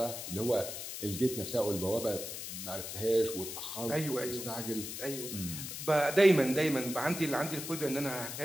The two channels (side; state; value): left; noise; hiss, 7 dB below the sound